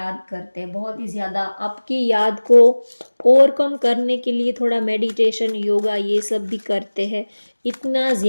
करते हैं, बहुत ही ज़्यादा आपकी याद को ओवरकम करने के लिए थोड़ा मेडिटेशन, योगा ये सब भी करते हैं। इतना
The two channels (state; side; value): inverted; both; correlation -1.00